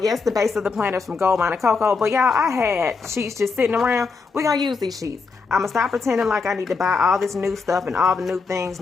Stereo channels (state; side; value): quieter; right; 4.7 dB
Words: the base of the planner is from Gold Mine and Cocoa. But y'all, I had sheets just sitting around. We're going to use these sheets. I'm going to stop pretending like I need to buy all this new stuff and all the new things,